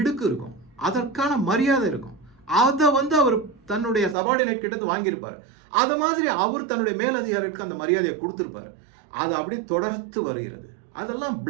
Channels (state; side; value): drops out; left; at 4.2 s